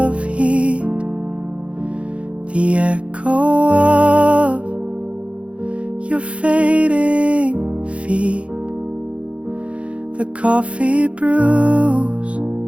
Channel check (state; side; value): late; left; 0.061 ms